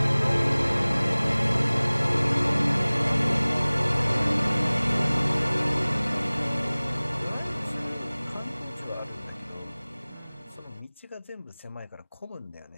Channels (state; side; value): inverted; both; correlation -1.00